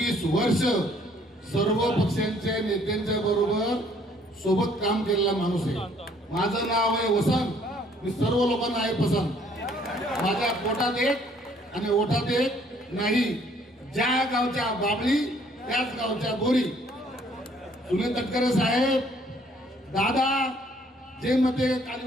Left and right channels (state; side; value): normal; both; correlation 0.62